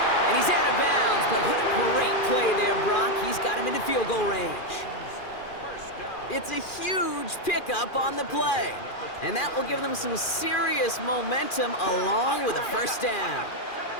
And he's out of bounds, but what a great play there, Brock. He's got him into field goal range. It's a huge pickup on the play. And that will give them some serious momentum along with a first down.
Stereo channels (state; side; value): late; right; 2.4 ms